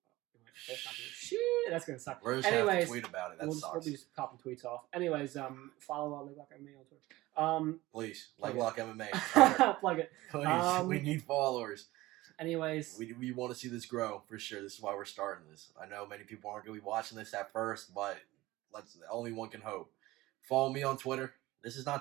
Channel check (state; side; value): quieter; left; 18.6 dB